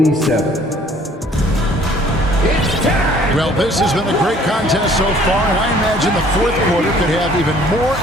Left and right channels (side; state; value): both; normal; correlation 0.56